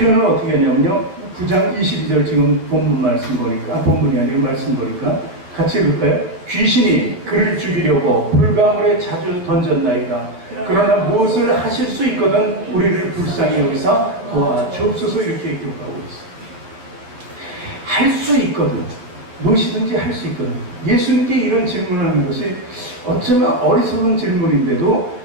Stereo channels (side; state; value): left; late; 11 ms